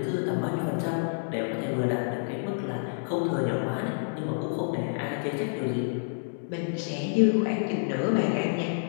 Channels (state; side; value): silent; right; digital silence